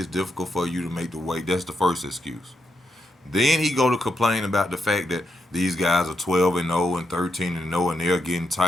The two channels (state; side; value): normal; both; correlation 0.82